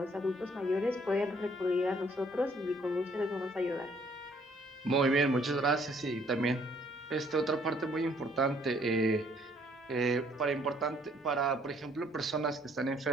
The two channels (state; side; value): normal; both; correlation 0.63